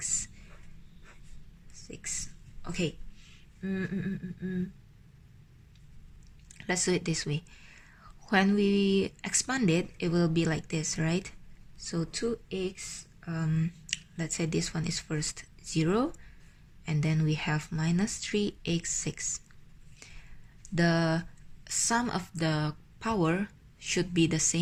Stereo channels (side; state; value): both; identical; correlation 1.00